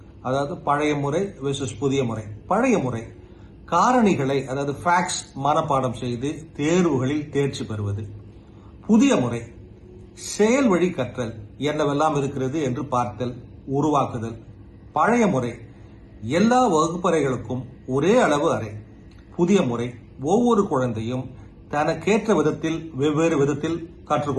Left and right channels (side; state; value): both; identical; correlation 1.00